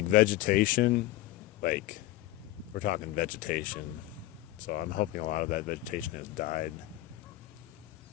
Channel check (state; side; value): quieter; right; 16.5 dB